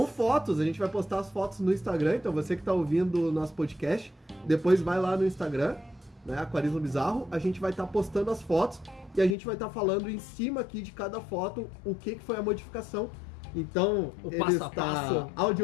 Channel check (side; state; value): right; drops out; at 9.3 s